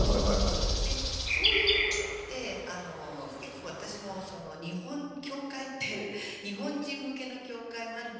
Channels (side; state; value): both; identical; correlation 1.00